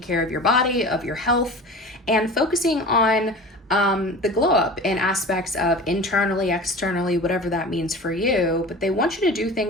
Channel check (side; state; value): both; normal; correlation 0.36